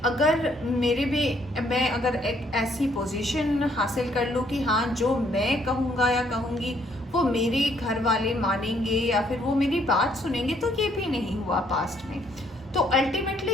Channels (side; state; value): both; normal; correlation 0.67